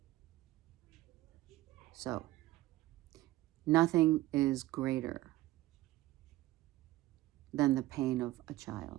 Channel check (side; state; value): left; quieter; 17.1 dB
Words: So, nothing is greater than the pain of a